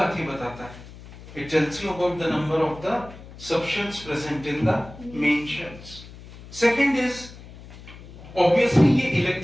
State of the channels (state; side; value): noise; left; hum, 17 dB below the sound